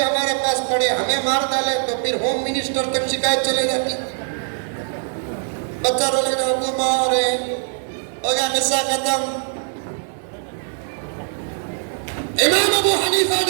ہمارے پاس پڑھے ہمیں مار ڈالے تو پھر ہوم منسٹر تک شکایت چلے جاتی، بچہ رو لگا ابو مارے، ہو گیا قصہ ختم۔ امام ابو حنیفہ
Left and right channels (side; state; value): left; silent; digital silence